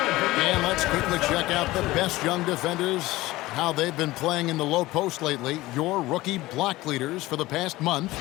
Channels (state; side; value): quieter; right; 18.5 dB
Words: to check out the best young defenders, how they've been playing in the low post lately. Your rookie block leaders for the past month.